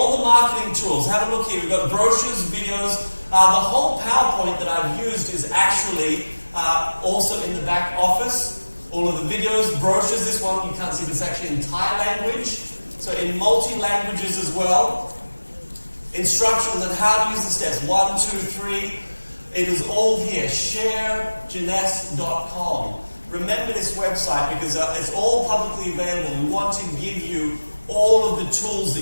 the marketing tools. Have a look here. We've got brochures, videos. The whole PowerPoint that I've used is actually also in the back office. All of the videos, brochures. This one you can't see, but it's actually in Thai language. So in multi-languages as well. Instructions on how to use the steps. 1, 2, 3. It is all here. Sharejeunesse.com. Remember this website because it's all publicly available. We want to give you all of the tools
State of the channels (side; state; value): both; inverted; correlation -1.00